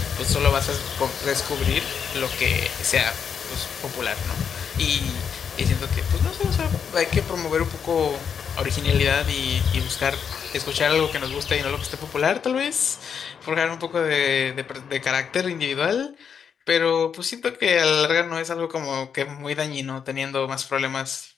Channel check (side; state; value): right; quieter; 7.1 dB